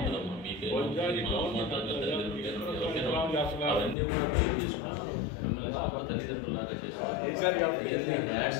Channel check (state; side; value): drops out; right; at 4.0 s